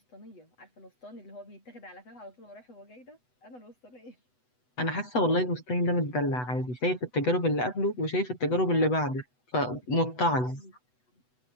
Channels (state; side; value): late; right; 8.0 ms